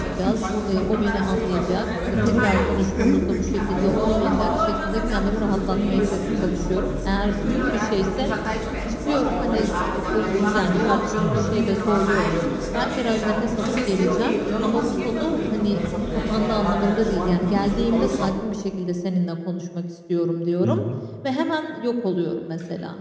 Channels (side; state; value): both; identical; correlation 1.00